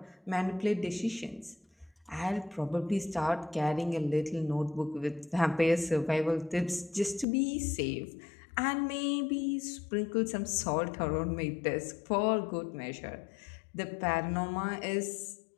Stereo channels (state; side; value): drops out; right; at 7.2 s